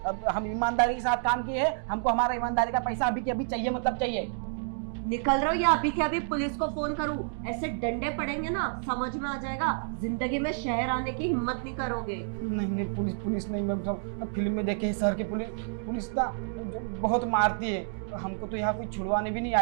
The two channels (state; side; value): silent; left; digital silence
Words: अब हम ईमानदारी के साथ काम किए हैं, हमको हमारा ईमानदारी का पैसा अभी के अभी चाहिए, मतलब चाहिए। निकल रहा हूँ या अभी के अभी पुलिस को फोन करूँ? ऐसे डंडे पड़ेंगे ना, समझ में आ जाएगा। जिंदगी में शहर आने की हिम्मत नहीं करोगे। नहीं, पुलिस नहीं मैम साहब, फिल्म में देखे हैं शहर की पुलिस ना जो बहुत मारती है, हमको तो यहाँ कोई छुड़वाने भी नहीं